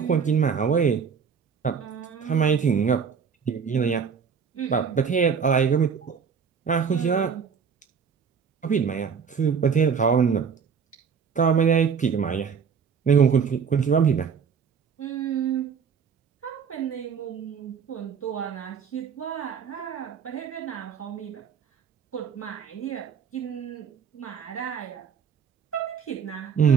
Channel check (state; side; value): quieter; left; 6.5 dB